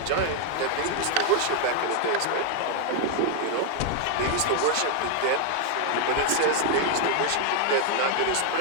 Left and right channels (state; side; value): different; both; correlation 0.00